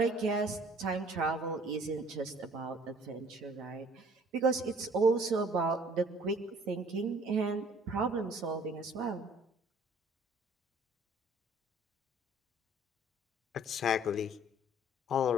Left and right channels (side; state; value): both; normal; correlation 0.55